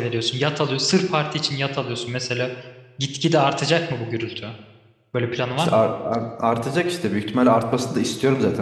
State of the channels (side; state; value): both; identical; correlation 1.00